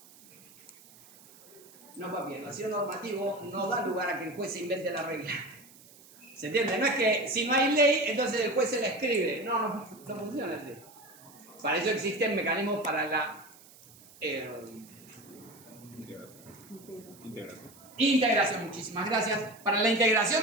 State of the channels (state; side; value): noise; right; hiss, 23 dB below the sound